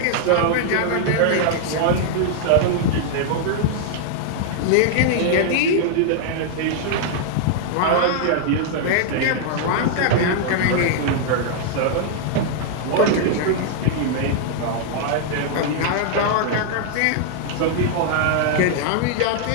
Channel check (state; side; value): different; both; correlation -0.01